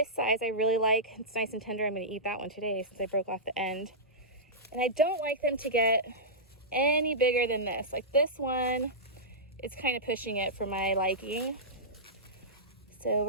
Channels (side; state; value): both; normal; correlation -0.15